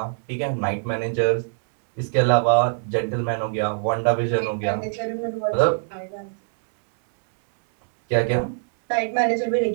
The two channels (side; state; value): left; silent; digital silence